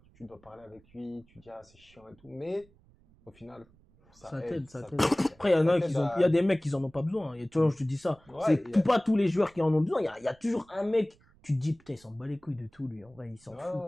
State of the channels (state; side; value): noise; right; rumble, 30 dB below the sound